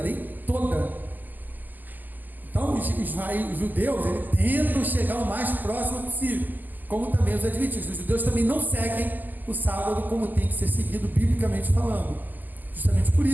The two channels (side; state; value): left; late; 0.085 ms